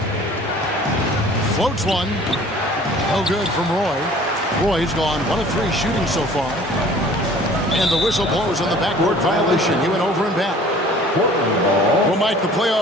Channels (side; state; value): both; normal; correlation 0.50